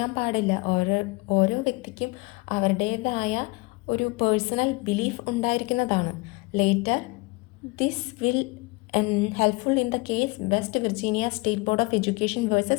പാടില്ല, ഓരോ വ്യക്തിക്കും അവരുടേതായ ഒരു പേഴ്സണൽ ബിലീഫ് ഉണ്ടായിരിക്കുന്നതാണ്. Later this will helpful in the case West Virginia State Board of Education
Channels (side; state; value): right; quieter; 25.6 dB